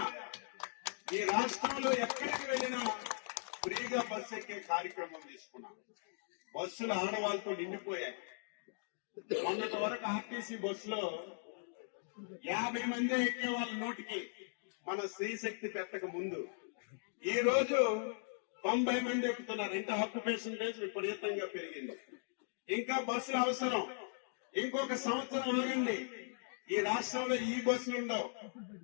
ఈ రాష్ట్రంలో ఎక్కడికి వెళ్ళినా ఫ్రీగా బస్సు ఎక్కే కార్యక్రమం తీసుకున్నాం. బస్సులు ఆడవాళ్ళతో నిండిపోయాయి. మొన్నటి వరకు ఆర్టీసీ బస్సులో 50 మంది ఎక్కే వాళ్ళ నోటికి మన స్త్రీశక్తి పెట్టక ముందు ఈ రోజు 90 మంది ఎక్కుతున్నారు. ఇంకా ఆక్యుపేషన్ రేట్ విపరీతంగా పెరిగింది. ఇంకా బస్సులు అవసరం. ఇంకొక సంవత్సరం ఆగండి, ఈ రాష్ట్రంలో ఈ బస్సులు ఉండవు,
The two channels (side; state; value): right; silent; digital silence